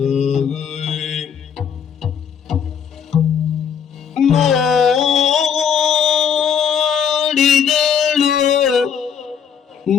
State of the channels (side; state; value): right; quieter; 7.6 dB